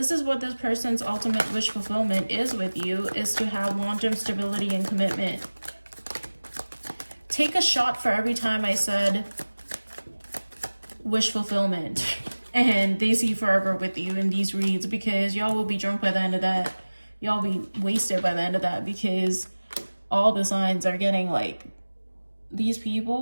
is what this person's ultimate wish fulfillment is with you, is to have long-term stability and commitment. Take a shot for every time I said wish fulfillment. And they see forever with you in these reads, because y'all will be drunk by the end of that. Y'all be wasted by the end of that, because all the signs are getting like, these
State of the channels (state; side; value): inverted; both; correlation -1.00